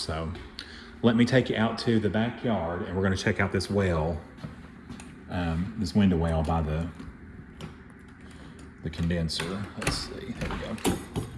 let me take you out to the backyard and we're gonna check out this well, this window well by the condenser. Let's see, there we go.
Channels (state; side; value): identical; both; correlation 1.00